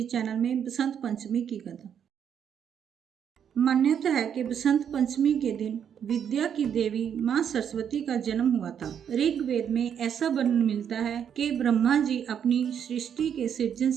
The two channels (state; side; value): quieter; left; 8.4 dB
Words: चैनल में बसंत पंचमी की कथा। मान्यता है कि बसंत पंचमी के दिन विद्या की देवी माँ सरस्वती का जन्म हुआ था। ऋग्वेद में ऐसा वर्णन मिलता है कि ब्रह्मा जी अपनी सृष्टि के सृजन